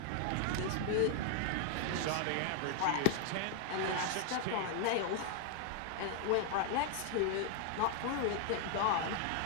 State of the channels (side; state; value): both; different; correlation 0.00